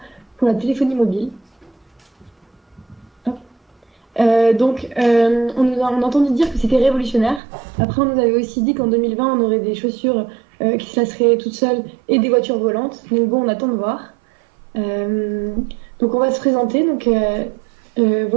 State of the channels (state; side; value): drops out; left; at 7.4 s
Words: pour la téléphonie mobile. Hop. On a entendu dire que c'était révolutionnaire. Après, on nous avait aussi dit qu'en 2020, on aurait des chaussures qui se laceraient toutes seules et des voitures volantes. Donc bon, on attend de voir. Euh, donc on va se présenter.